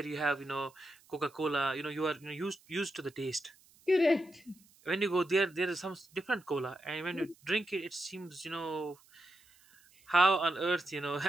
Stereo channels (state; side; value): noise; right; hiss, 28 dB below the sound